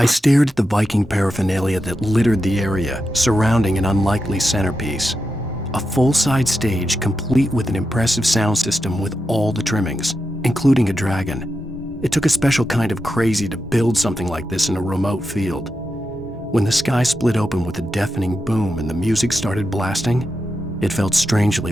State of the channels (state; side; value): normal; both; correlation 0.88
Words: stared at the Viking paraphernalia that littered the area, surrounding an unlikely centerpiece. A full-size stage complete with an impressive sound system with all the trimmings, including a dragon. It took a special kind of crazy to build something like this in a remote field. When the sky split open with a deafening boom and the music started blasting, it felt strangely